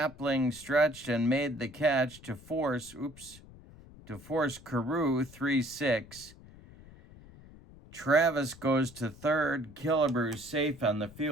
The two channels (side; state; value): left; noise; rumble, 20 dB below the sound